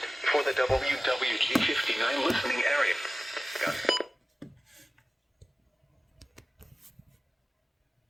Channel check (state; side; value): normal; both; correlation 0.97